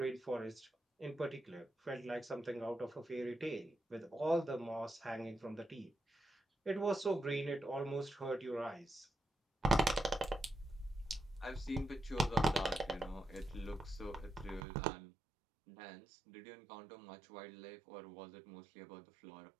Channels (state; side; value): drops out; left; at 14.6 s